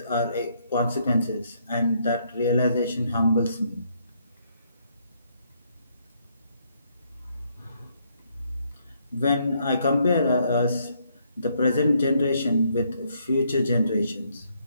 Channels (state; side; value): inverted; both; correlation -0.72